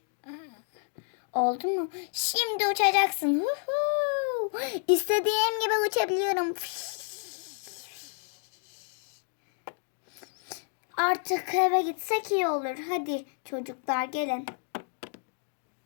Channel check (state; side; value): silent; right; 58 dB below the other